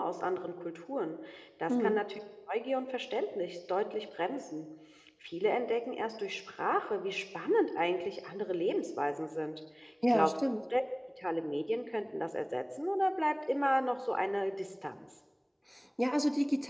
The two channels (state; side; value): identical; both; correlation 1.00